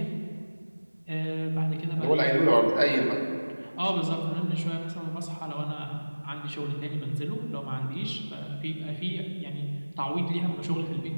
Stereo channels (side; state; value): both; inverted; correlation -1.00